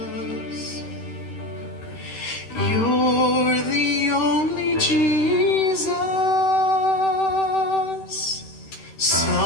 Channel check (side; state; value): right; late; 13 ms